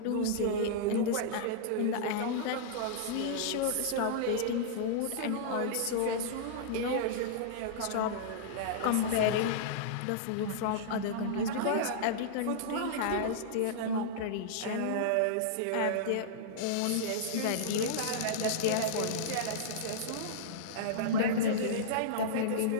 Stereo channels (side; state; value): both; different; correlation -0.03